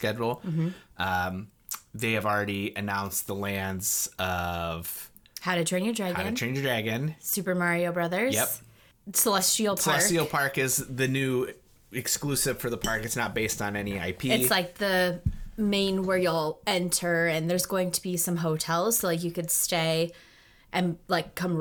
They have already announced the lands of How to Train Your Dragon. Super Mario Brothers. Yep. Celestial Park. Celestial Park is the new exclusive for the park. It's not based on any IP. It's like the main where you'll enter, and there's going to be some hotels, so like you could stay and like come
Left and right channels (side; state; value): both; identical; correlation 1.00